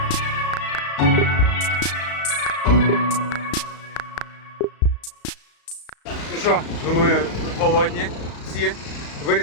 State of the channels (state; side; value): late; right; 35 ms